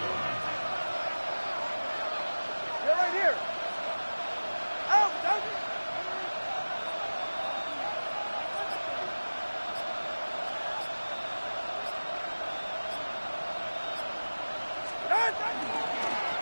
You're right here. Out.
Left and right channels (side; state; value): both; inverted; correlation -1.00